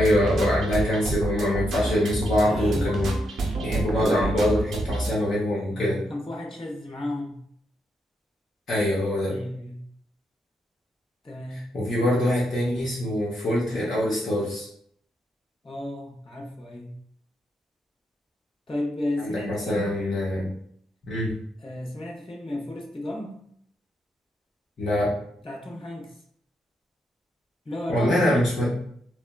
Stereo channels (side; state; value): both; normal; correlation 0.81